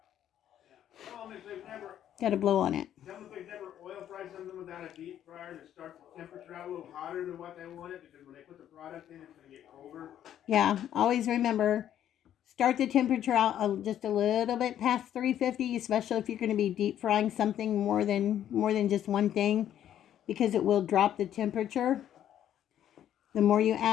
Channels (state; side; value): quieter; right; 10.8 dB